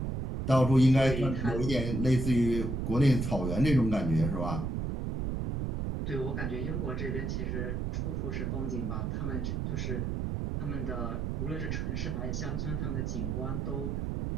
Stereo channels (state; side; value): noise; right; rumble, 2 dB below the sound